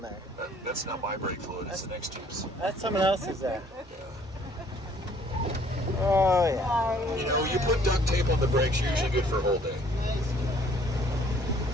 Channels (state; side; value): normal; both; correlation 0.59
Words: there. That's not my brake fluid. It's the next Jeep's. That's someone else's there. Oh, yeah. You know, you put duct tape on the brakes, you're usually good for a whole day.